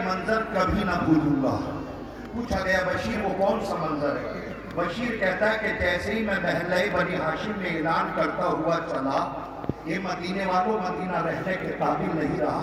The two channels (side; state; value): both; identical; correlation 1.00